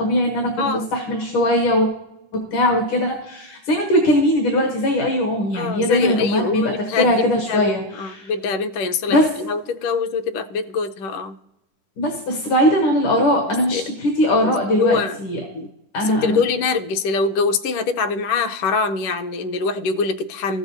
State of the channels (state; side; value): late; right; 10 ms